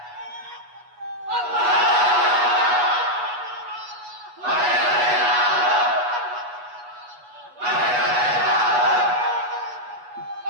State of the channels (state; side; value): late; left; 8.2 ms